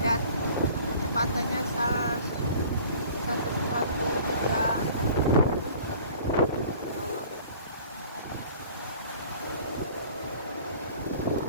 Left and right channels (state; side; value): inverted; both; correlation -0.48